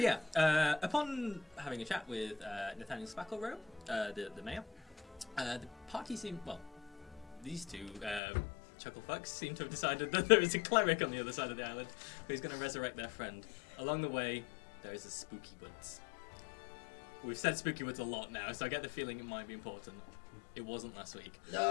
upon having a chat with Nathaniel Spacklerobe, the mayor, the party seemed, well, these two chucklefucks seem to have decided that there is a cleric on the other side of the island who's going to resurrect their friend. Along the way, there is a spooky woods. We've said spooky woods a lot now, so I get the feeling it might be important. It wasn't last week.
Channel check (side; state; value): right; drops out; at 8.2 s